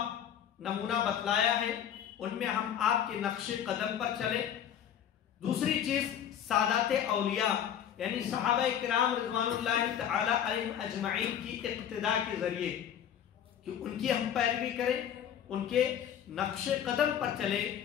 نمونہ بتلایا ہے، ان میں ہم آپ کے نقش قدم پر چلیں۔ دوسری چیز سادات اولیاء یعنی صحابہ کرام رضوان اللہ تعالی علیہم اجمعین کی اقتداء کے ذریعے کہ ان کی ہم پیروی کریں، ان کے نقش قدم پر چلے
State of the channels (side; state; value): right; quieter; 9.4 dB